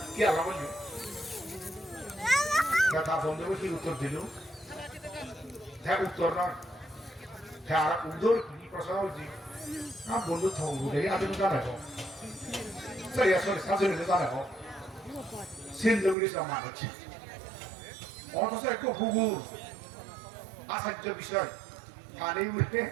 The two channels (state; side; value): drops out; left; at 16.2 s